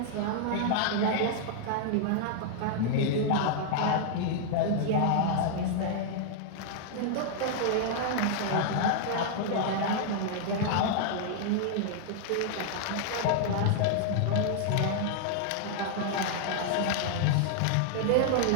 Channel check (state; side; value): different; both; correlation -0.01